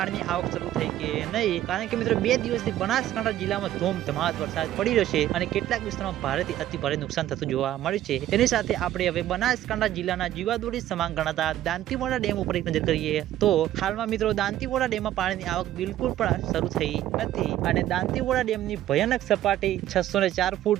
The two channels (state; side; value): quieter; left; 12.9 dB